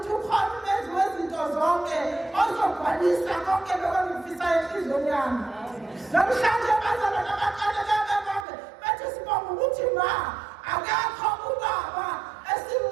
ukhona umenzi wezinto zonke ozogcwalisa konke bekangifisa enhliziyweni yami namhlanje abazalwane abaqale bebebonke bethi sibonga ukuthi ma akekho ubaba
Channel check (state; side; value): drops out; left; at 8.5 s